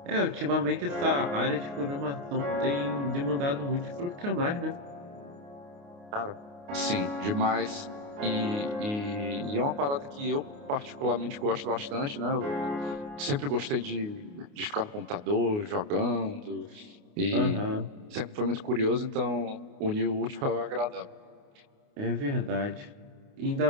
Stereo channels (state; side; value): late; left; 29 ms